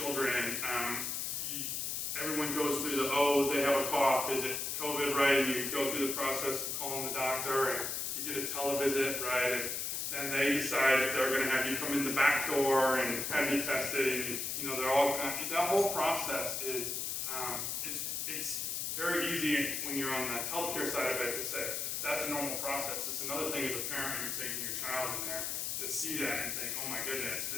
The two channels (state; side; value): noise; left; hiss, 2 dB below the sound